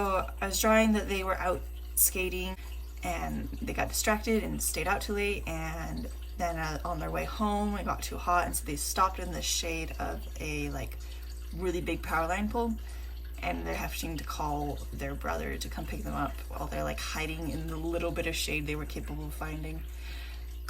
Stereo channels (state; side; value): identical; both; correlation 1.00